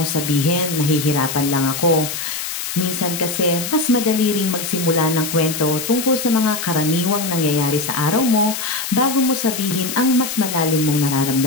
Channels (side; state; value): left; noise; hiss, 5 dB below the sound